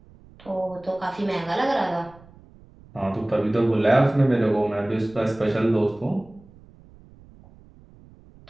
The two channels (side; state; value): right; noise; rumble, 25 dB below the sound